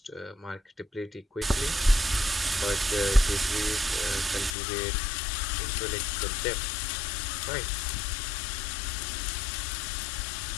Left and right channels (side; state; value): right; drops out; at 4.5 s